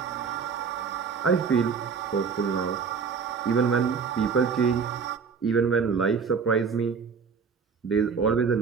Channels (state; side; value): quieter; left; 5.8 dB